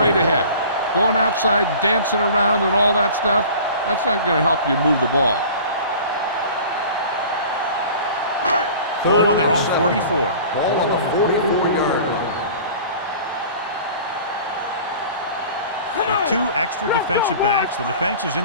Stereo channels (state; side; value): inverted; both; correlation -0.42